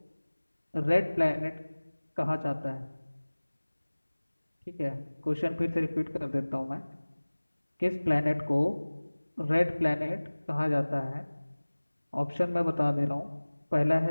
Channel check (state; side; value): inverted; both; correlation -1.00